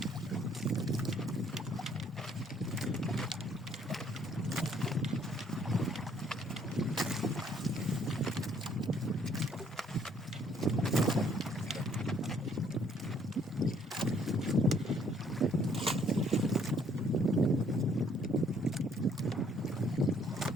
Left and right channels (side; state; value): both; normal; correlation 0.64